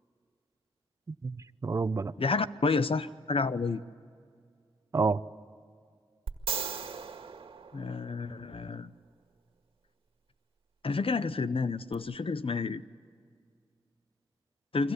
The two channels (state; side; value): normal; both; correlation 0.58